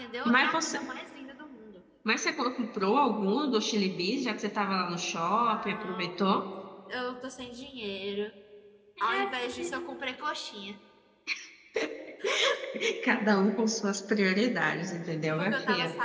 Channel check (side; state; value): both; identical; correlation 1.00